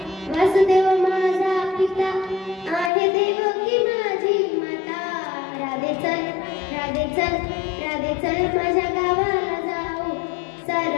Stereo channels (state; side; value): drops out; right; at 2.9 s